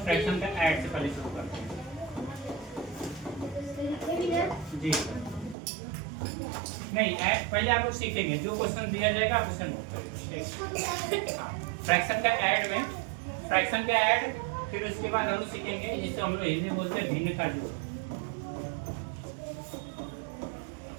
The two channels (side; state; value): left; drops out; at 5.6 s